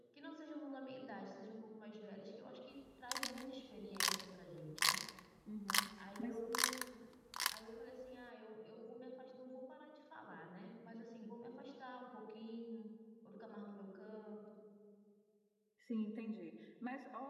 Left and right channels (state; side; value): identical; both; correlation 1.00